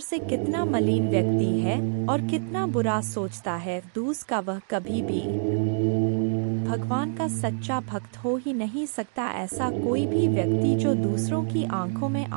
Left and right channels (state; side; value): silent; left; digital silence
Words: कितना मलिन व्यक्ति है और कितना बुरा सोचता है। दूसरा, वह कभी भी भगवान का सच्चा भक्त हो ही नहीं सकता। ऐसा कोई भी व्यक्ति जो दूसरों की आंखों में